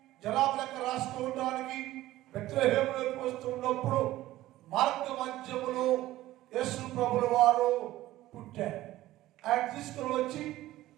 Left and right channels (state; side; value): quieter; left; 15.7 dB